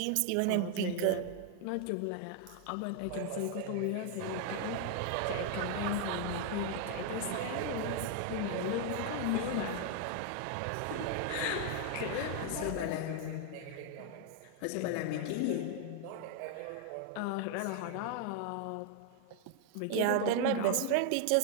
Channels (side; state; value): both; different; correlation 0.00